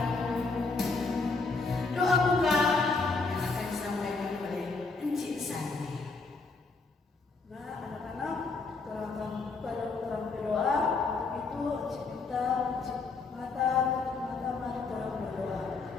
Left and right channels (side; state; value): right; quieter; 4.1 dB